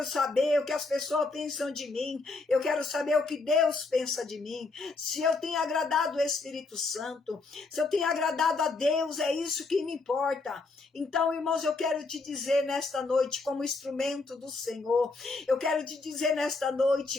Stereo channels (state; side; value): quieter; right; 3.7 dB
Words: saber o que as pessoas pensam de mim. Eu quero saber o que Deus pensa de mim. Se eu tenho agradado o Espírito Santo, se eu tenho agradado a Deus, é isso que me importa. Então, irmãos, eu quero te dizer nesta noite, como instrumento do Senhor, eu quero te dizer nesta